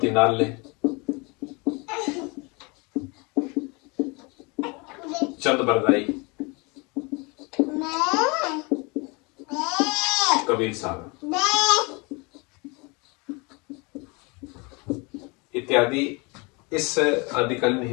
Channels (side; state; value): right; quieter; 28.6 dB